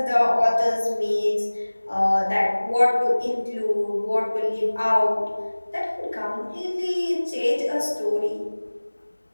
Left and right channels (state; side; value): inverted; both; correlation -1.00